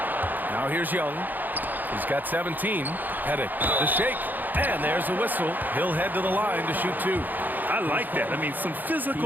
Now here's Young. He's got 17. Pettit, the shake. And there's a whistle. He'll head to the line to shoot 2. I like that. I mean, some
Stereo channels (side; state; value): left; late; 0.086 ms